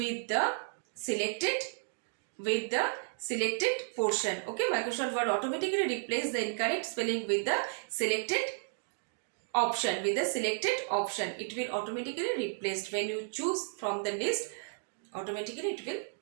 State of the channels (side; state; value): left; silent; digital silence